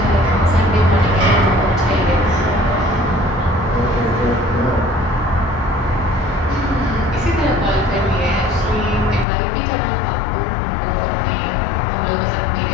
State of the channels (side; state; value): right; drops out; at 9.2 s